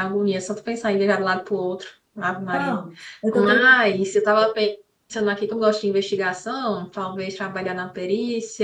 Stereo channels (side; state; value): both; identical; correlation 1.00